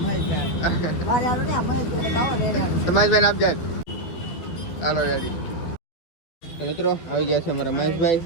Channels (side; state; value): right; late; 12 ms